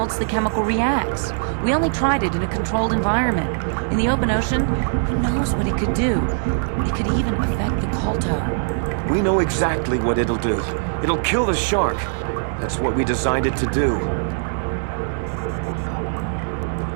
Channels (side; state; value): left; silent; digital silence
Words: the chemical reacts. We only tried it in a controlled environment. In the open ocean, who knows what it could do? It could even affect the KotOR. We know exactly what it'll do. It'll kill the shark. That's what we designed it to do.